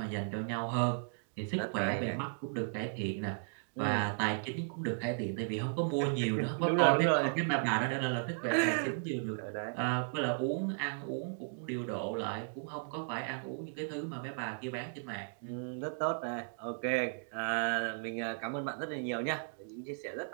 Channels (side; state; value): left; silent; digital silence